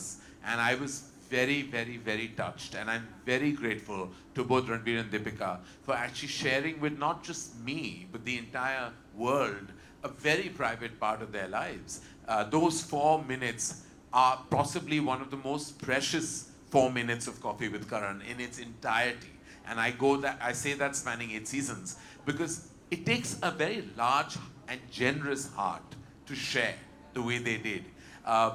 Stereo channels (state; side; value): identical; both; correlation 1.00